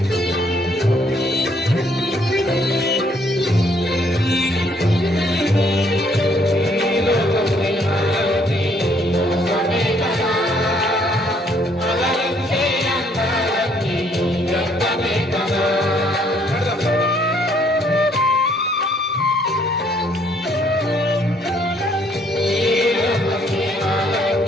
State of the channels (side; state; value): both; normal; correlation 0.66